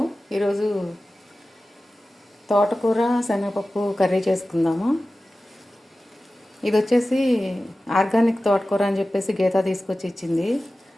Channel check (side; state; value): both; normal; correlation 0.95